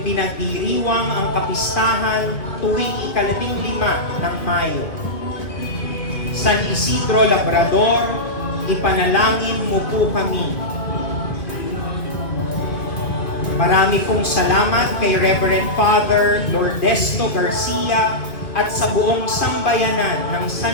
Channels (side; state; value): right; late; 1.9 ms